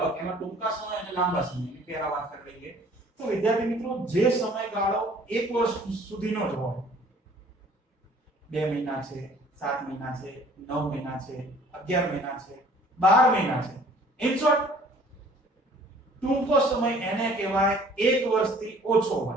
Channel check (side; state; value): both; normal; correlation 0.53